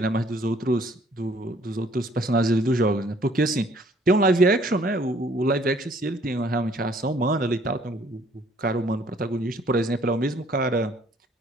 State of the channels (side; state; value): both; normal; correlation 0.60